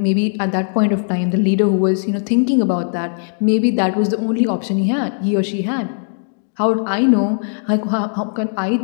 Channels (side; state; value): right; silent; digital silence